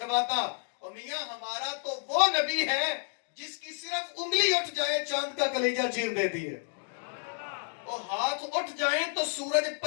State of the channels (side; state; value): right; silent; 57 dB below the other